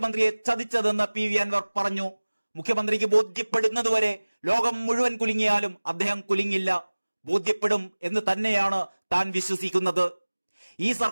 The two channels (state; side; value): inverted; both; correlation -1.00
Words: ചതിച്ചതെന്ന് PV അൻവർ പറഞ്ഞു. മുഖ്യമന്ത്രിക്ക് ബോധ്യപ്പെടുന്നതുവരെ ലോകം മുഴുവൻ കുലുങ്ങിയാലും അദ്ദേഹം കുലുങ്ങില്ല. ബോധ്യപ്പെടും എന്ന് തന്നെയാണ് താൻ വിശ്വസിക്കുന്നത്. ഈ